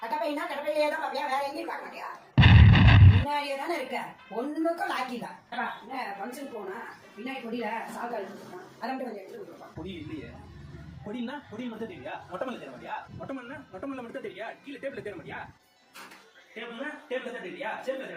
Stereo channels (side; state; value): both; identical; correlation 1.00